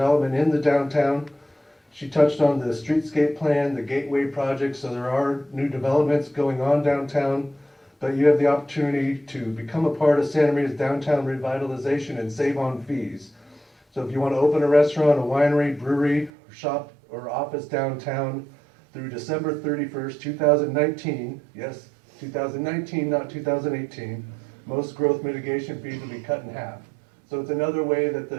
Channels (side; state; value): left; drops out; at 16.3 s